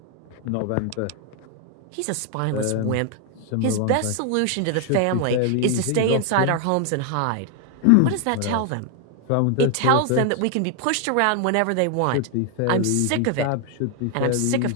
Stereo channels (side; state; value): both; different; correlation 0.00